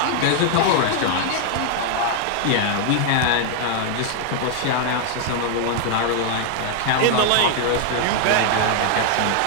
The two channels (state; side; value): different; both; correlation 0.00